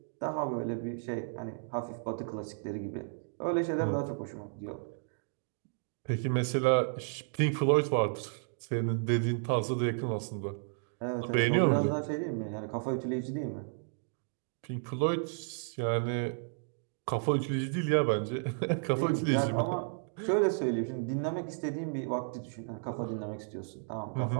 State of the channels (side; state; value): left; silent; digital silence